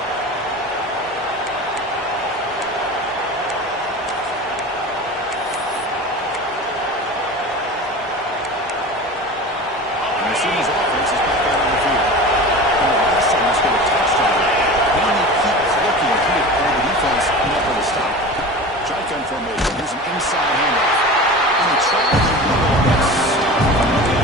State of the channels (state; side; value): normal; both; correlation 0.33